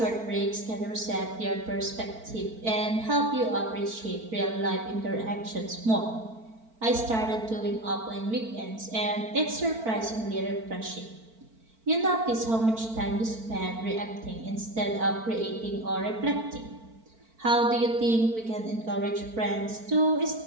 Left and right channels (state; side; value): late; left; 4.5 ms